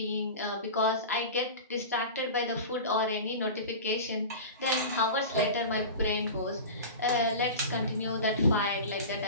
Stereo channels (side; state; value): both; inverted; correlation -0.31